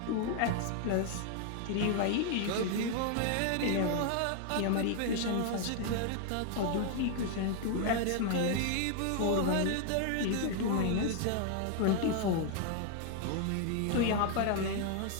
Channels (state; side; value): different; both; correlation 0.00